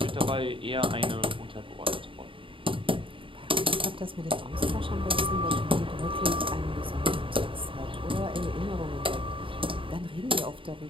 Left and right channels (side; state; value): left; late; 0.25 ms